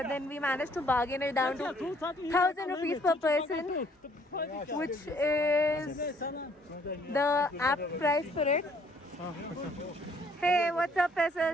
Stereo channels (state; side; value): normal; both; correlation 0.62